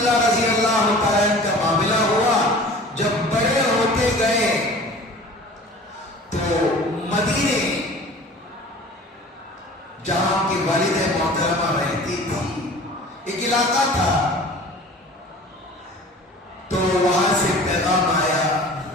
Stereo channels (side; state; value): both; normal; correlation 0.43